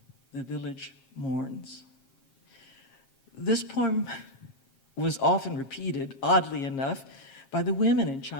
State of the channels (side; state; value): right; late; 7.4 ms